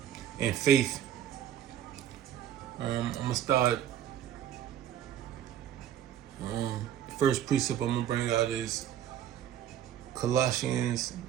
and faith. I'm going to start. The first precept I'm going to bring out is Colossians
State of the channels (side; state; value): left; quieter; 10.7 dB